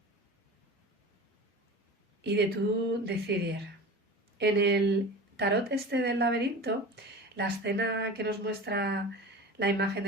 Y de tú decidir. En el tarot este del laberinto, la escena que nos muestra la imagen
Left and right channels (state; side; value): normal; both; correlation 0.34